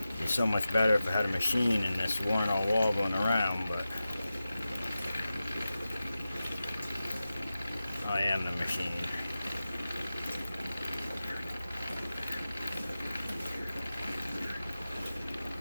be so much better if I had a machine and this weren't all wobbling around, but I am the machine.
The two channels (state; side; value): inverted; both; correlation -0.94